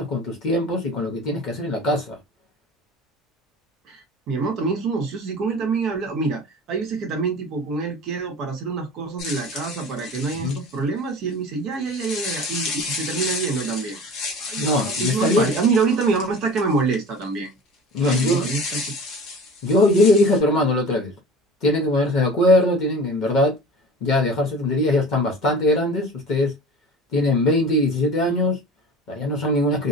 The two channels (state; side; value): normal; both; correlation 0.38